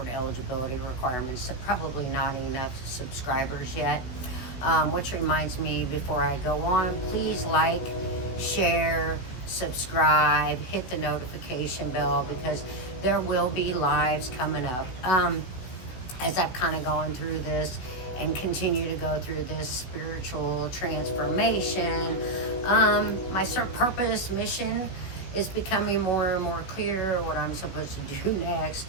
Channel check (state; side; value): late; right; 16 ms